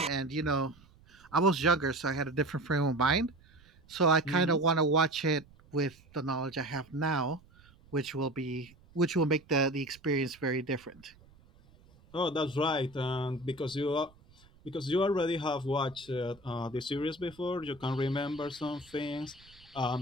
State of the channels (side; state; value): right; noise; rumble, 27 dB below the sound